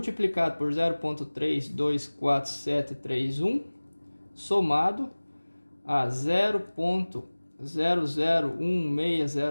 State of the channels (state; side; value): inverted; both; correlation -1.00